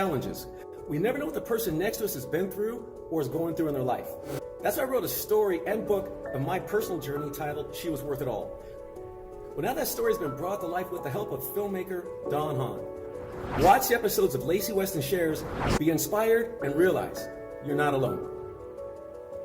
We never know what the person next to us has been through or is going through in their life. That's why I wrote a story and book of my personal journey titled She Was Worth It All. Well, now that story has been brought to life with the help of filmmaker Don Hahn. Watch the episodes of Lacy Weston Shares, be inspired, and realize you're not alone.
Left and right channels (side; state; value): both; identical; correlation 1.00